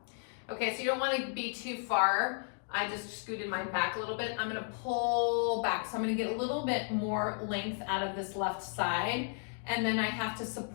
Okay, so you don't wanna be too far. I just scooted mine back a little bit. I'm gonna pull back. So I'm gonna get a little bit more length out of this left side, and then I have to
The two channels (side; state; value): right; silent; 55 dB below the other